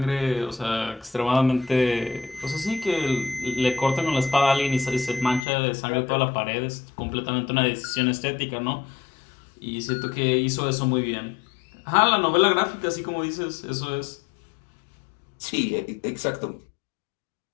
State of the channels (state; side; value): drops out; right; at 5.5 s